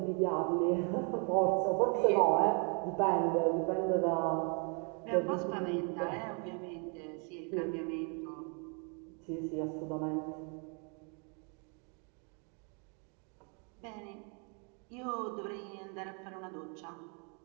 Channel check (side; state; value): left; quieter; 37.5 dB